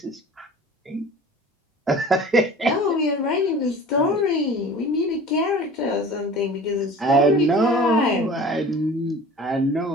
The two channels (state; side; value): normal; both; correlation 0.41